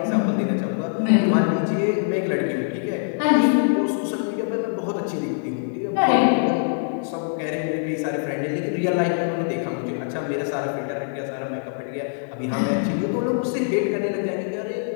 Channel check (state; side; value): silent; right; digital silence